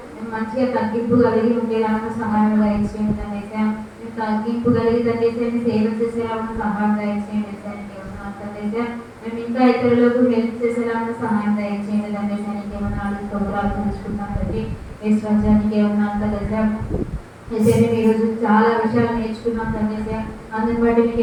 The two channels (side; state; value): both; identical; correlation 1.00